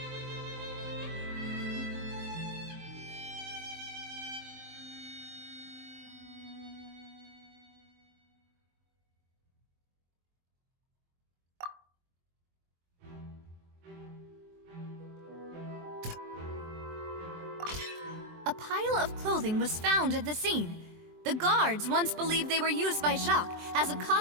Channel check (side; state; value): left; late; 23 ms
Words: A pile of clothing was found at the scene. The guards once believed they were used by Jacques as a